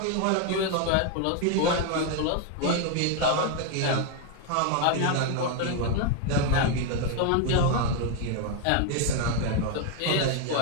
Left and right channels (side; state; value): both; different; correlation 0.01